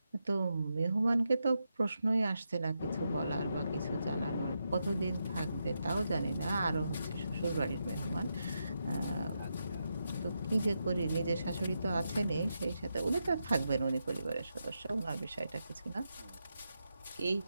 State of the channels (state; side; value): inverted; both; correlation -0.85